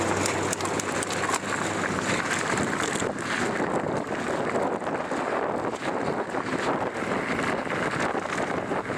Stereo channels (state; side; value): identical; both; correlation 1.00